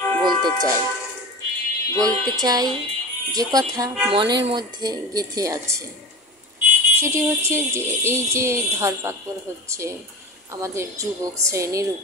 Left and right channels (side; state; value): both; normal; correlation 0.30